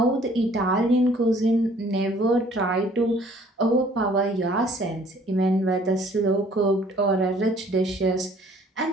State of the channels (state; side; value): normal; both; correlation 0.57